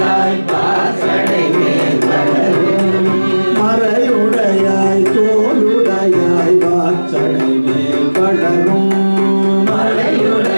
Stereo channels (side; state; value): both; inverted; correlation -1.00